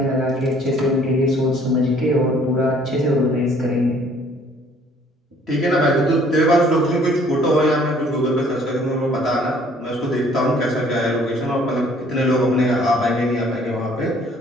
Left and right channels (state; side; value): normal; both; correlation 0.58